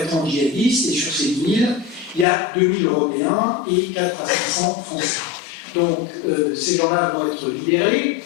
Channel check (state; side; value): drops out; right; at 2.2 s